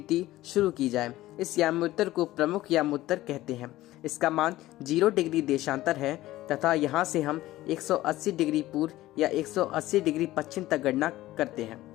शुरू की जाए। इस याम्योत्तर को प्रमुख यामोत्तर कहते हैं। इसका मान 0 डिग्री देशांतर है तथा यहाँ से हम 180 डिग्री पूर्व या 180 डिग्री पश्चिम तक गणना करते हैं।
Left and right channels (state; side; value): quieter; right; 16.2 dB